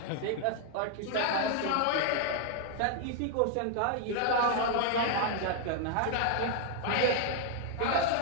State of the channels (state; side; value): different; both; correlation 0.00